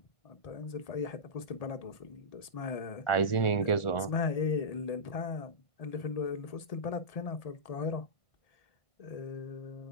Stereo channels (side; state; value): right; late; 1.8 ms